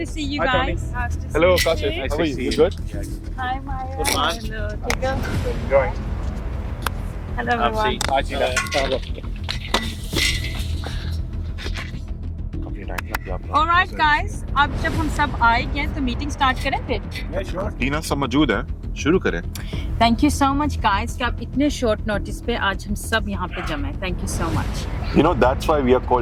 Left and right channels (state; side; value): identical; both; correlation 1.00